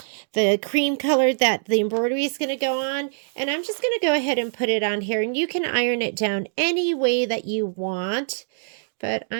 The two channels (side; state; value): left; silent; digital silence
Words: cream color that the embroidery is gonna go on. And I'm just gonna go ahead and put it on here, and you can iron it down any way that you want. But